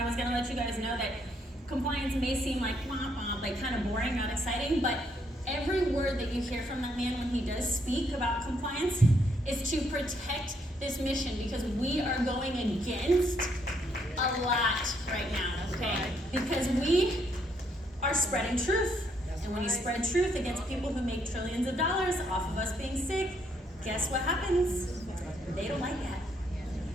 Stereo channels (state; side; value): normal; both; correlation 0.72